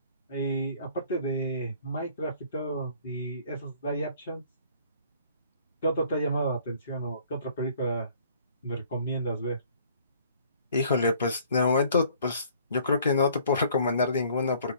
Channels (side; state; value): both; inverted; correlation -0.56